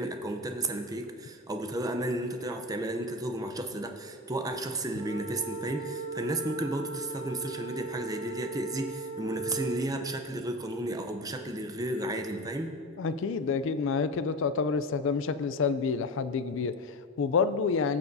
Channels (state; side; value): normal; both; correlation 0.28